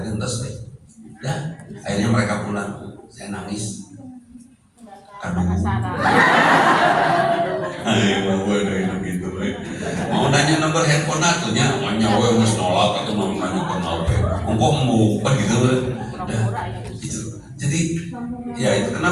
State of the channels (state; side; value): identical; both; correlation 1.00